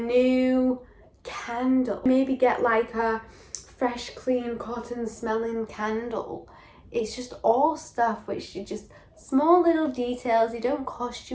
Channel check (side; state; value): both; identical; correlation 1.00